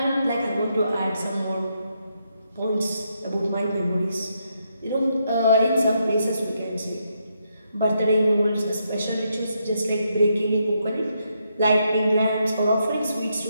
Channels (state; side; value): inverted; both; correlation -0.79